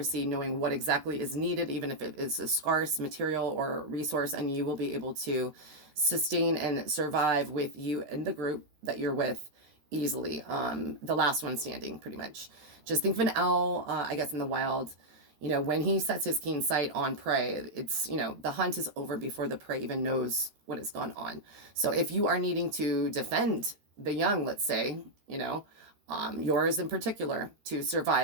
knowing what exactly is needed, even if it is a scarce material or resource, and you will be able to sustain and survive with you and the group that you're with easily. The last one standing, pretty much. Just think of an owl, I guess, in the wild. When he sets his keen sight on prey, it's, the hunt is over before the prey even knows what has gone on. So if you are needing to defend the young, let's say, yours in particular, to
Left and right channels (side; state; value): left; late; 13 ms